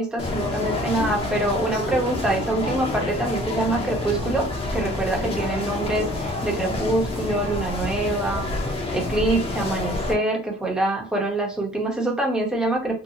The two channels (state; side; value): normal; both; correlation 0.54